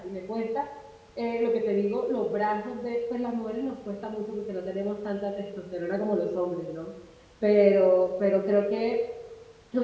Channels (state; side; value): identical; both; correlation 1.00